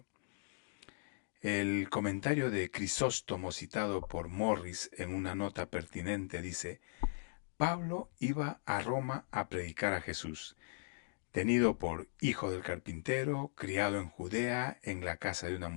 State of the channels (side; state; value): right; silent; digital silence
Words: El comentario de Crisóstomo citado por Morris en una nota pertinente dice, Pablo iba a Roma a predicar a Jesús, tenido por hijo del carpintero, criado en Judea, en la casa de una